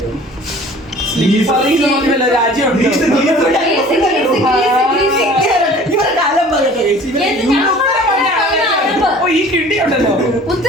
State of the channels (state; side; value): normal; both; correlation 0.47